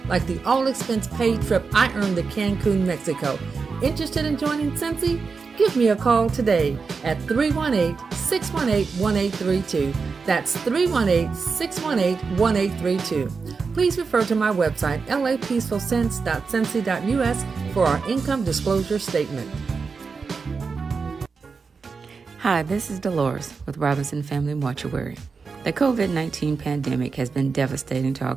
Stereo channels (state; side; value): quieter; left; 4.8 dB